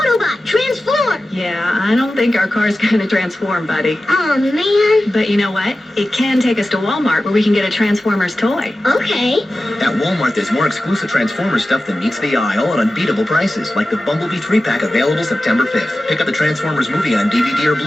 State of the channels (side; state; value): both; normal; correlation 0.94